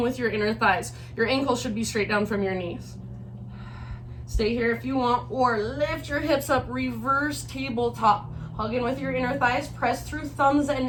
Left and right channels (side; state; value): both; identical; correlation 1.00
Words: your inner thighs. Your ankles should be straight down from your knees. Stay here if you want, or lift your hips up, reverse tabletop. Hug in with your inner thighs. Press through thumbs